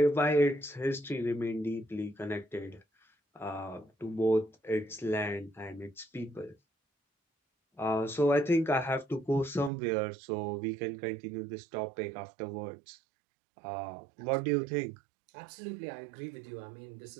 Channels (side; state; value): left; drops out; at 9.7 s